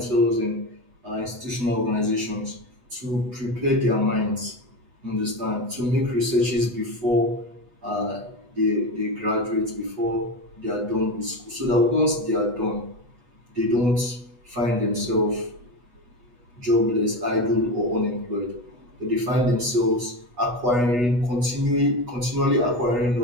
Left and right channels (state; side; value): late; left; 8.2 ms